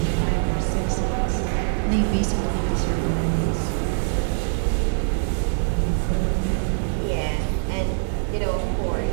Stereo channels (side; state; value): left; silent; digital silence